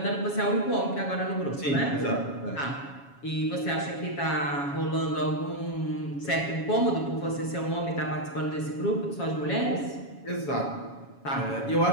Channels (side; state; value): right; late; 7.2 ms